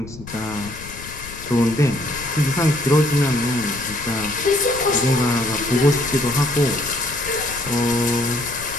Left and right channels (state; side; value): noise; left; rumble, 15 dB below the sound